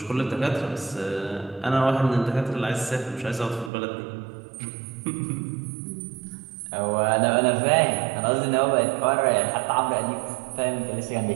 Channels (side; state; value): left; drops out; at 3.7 s